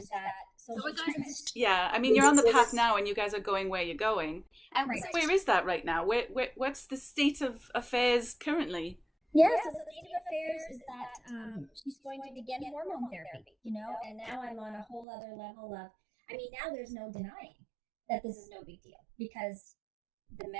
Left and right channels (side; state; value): left; drops out; at 15.1 s